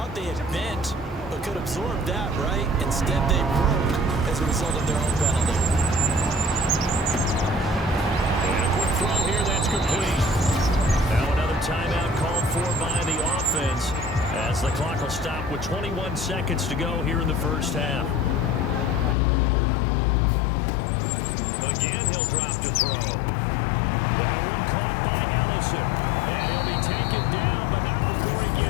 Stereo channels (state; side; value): drops out; right; at 19.2 s